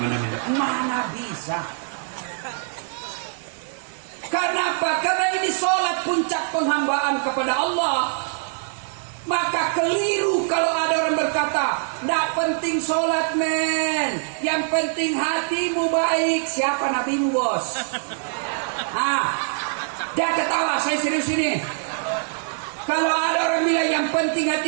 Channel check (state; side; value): silent; left; digital silence